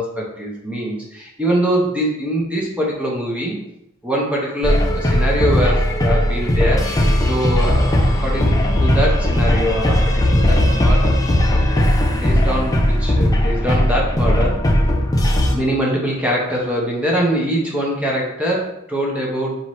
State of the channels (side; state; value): both; normal; correlation 0.77